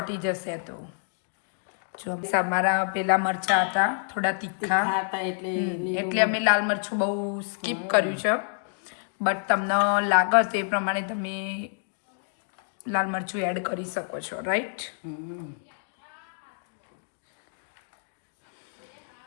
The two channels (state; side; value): silent; right; digital silence